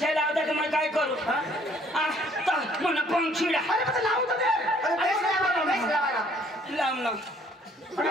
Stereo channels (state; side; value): normal; both; correlation 0.61